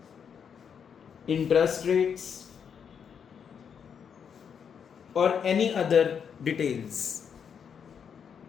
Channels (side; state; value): right; quieter; 7.3 dB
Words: इंटरेस्ट रेट्स और any other details